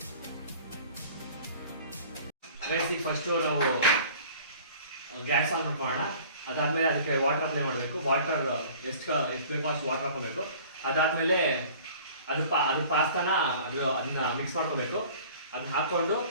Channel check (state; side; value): inverted; both; correlation -0.47